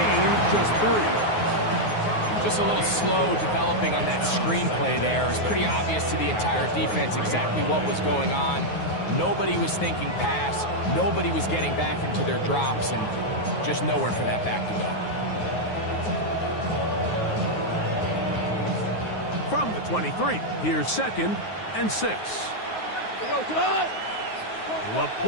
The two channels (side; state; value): right; late; 9.5 ms